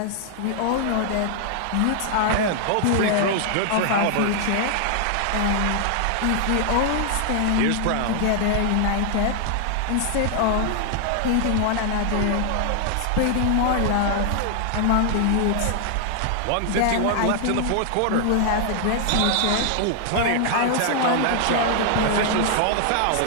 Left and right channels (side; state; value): both; different; correlation 0.00